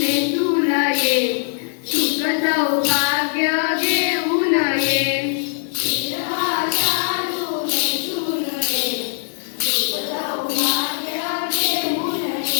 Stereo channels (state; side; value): silent; right; digital silence